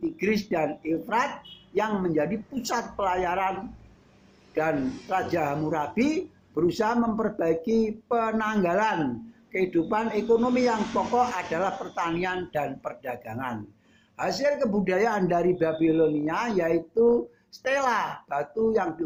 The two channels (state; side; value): identical; both; correlation 1.00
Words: Tigris dan Efrat yang menjadi pusat pelayaran, dan Raja Hammurabi berusaha memperbaiki penanggalan. Kehidupan ekonomi yang pokok adalah pertanian dan perdagangan. Hasil kebudayaan dari Babilonia yaitu stela, batu yang